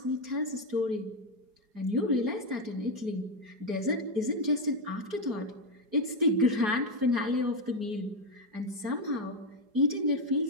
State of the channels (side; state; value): left; late; 4.8 ms